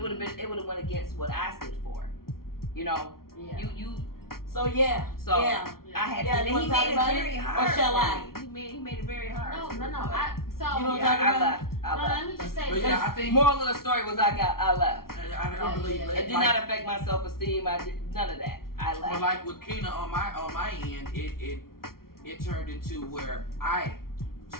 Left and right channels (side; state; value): right; late; 0.93 ms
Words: would have went against what I stood for. Yeah. You. So yeah. So yeah. I had Yeah, to. you wanna He talk made it about very it? hard. Or shall for I? me. He made it very hard. No. You don't Yeah, talk I about left. No, let me just say But this. yeah, I think Moral of the story was I left. I believe Yeah. that. It did not affect my self-esteem. I did none of that. I left. But like with Keena on my end, it turned into where I